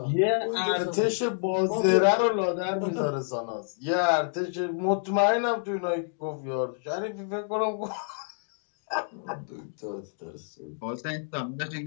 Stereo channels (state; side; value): silent; right; 57 dB below the other